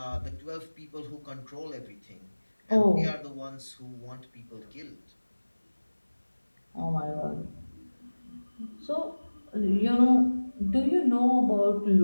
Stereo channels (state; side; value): inverted; both; correlation -1.00